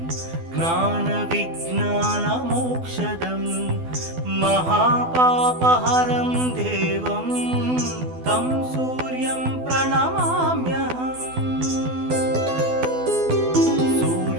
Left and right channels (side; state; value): left; late; 12 ms